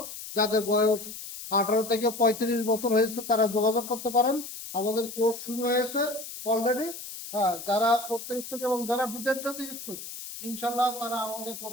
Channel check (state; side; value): noise; left; hiss, 11 dB below the sound